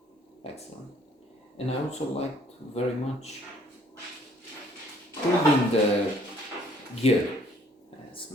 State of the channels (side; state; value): both; normal; correlation 0.61